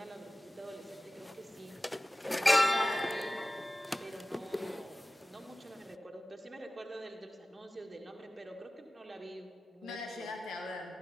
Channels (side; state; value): both; normal; correlation 0.97